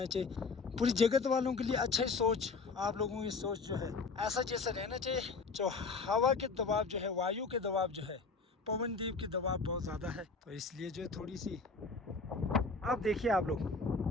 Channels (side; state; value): right; quieter; 4.3 dB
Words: चाहिए। पूरी जगत वालों के लिए अच्छा सोच, आप लोगों की सोच जो है ऐसा जैसा रहना चाहिए। जो हवा के दबाव जो है, वायु के दबाव जो है, पवनदीप के दबाव बहुत ज़्यादा है, तो इसलिए जो है थोड़ी सी, आप देखिए आप लोग